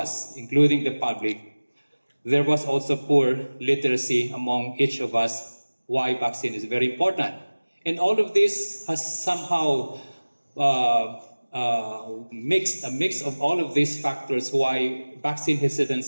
including the public, there was also poor literacy among each of us why vaccine is very important. And all of this has somehow a mix of all of these factors why vaccine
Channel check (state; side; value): inverted; both; correlation -1.00